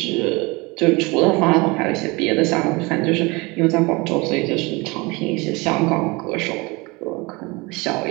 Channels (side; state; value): left; quieter; 25.4 dB